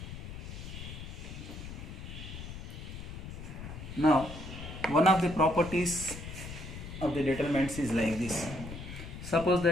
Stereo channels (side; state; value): left; noise; rumble, 10 dB below the sound